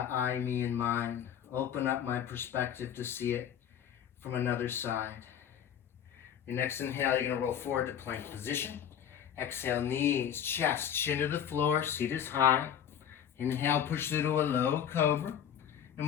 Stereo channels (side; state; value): right; quieter; 9.2 dB